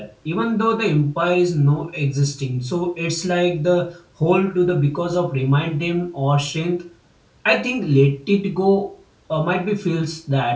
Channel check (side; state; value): both; identical; correlation 1.00